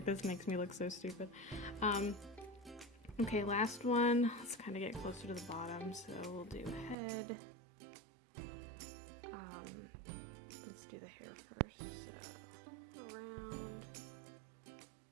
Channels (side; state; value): left; drops out; at 7.0 s